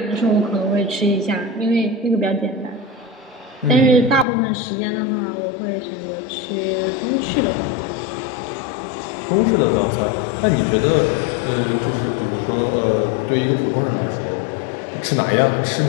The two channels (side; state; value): right; drops out; at 4.2 s